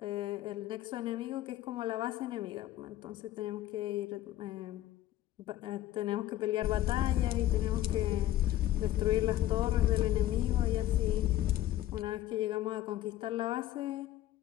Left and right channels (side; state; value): right; quieter; 13.9 dB